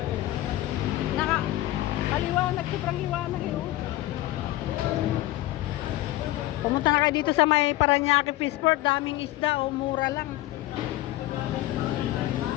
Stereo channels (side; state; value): right; quieter; 16.5 dB